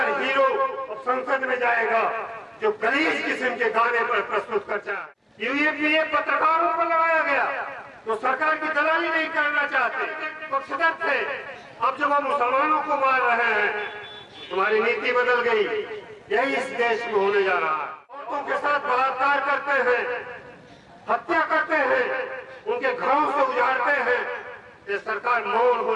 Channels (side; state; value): both; identical; correlation 1.00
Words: हीरो अब संसद में जाएगा जो गलीज किस्म के गाने पर प्रस्तुत करता है। यूएपीए पत्रकारों पर लगाया गया तो सरकार की दलाली नहीं करना चाहते, पक्षधर थे। अब जब हम मुसलमानों को मार रहे हैं, तुम्हारी नीति बदल गई। यही इस देश में होने जा रहा है। औरतों के साथ बलात्कार करते हैं, हत्या करते हैं, उनके घरों से उजाड़ते हैं। ये सरकार मौन हो